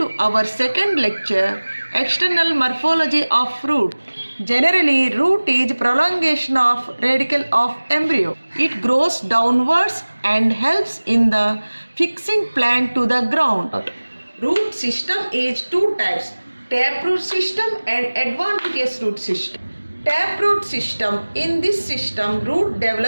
our second lecture, External Morphology of Root. Generally, root is prolongation of radicle of embryo. It grows downwards and helps in the fixing plant to the ground. Root system is two types, taproot system and adventitious root system. Taproot system, in this system root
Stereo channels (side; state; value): both; inverted; correlation -1.00